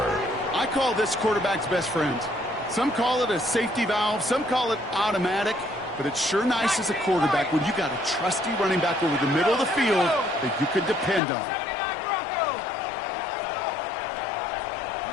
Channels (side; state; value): right; drops out; at 11.2 s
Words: I call this quarterback's best friend. Some call it a safety valve, some call it automatic, but it's sure nice as a quarterback when you got a trusty running back over the middle of the field that you could depend on. 79 Broncos.